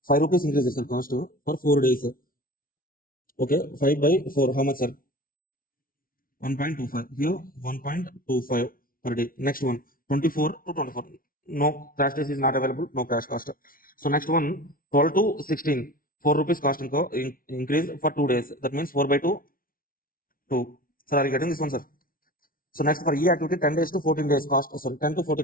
5 rupees increases, sir, cost for 4 days, sir. Okay, 5 by 4, how much, sir? 1.25. Here, 1.25 per day. Next one, 24 to 24. No crash days is not available, no crash cost. So next one, 12 to 16. 4 rupees cost increase for 2 days. That means 4 by 2, 2. Sir, are you getting this one, sir? So next for E activity, 10 days to 14 days cost, sorry, 10 to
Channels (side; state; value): right; late; 0.42 ms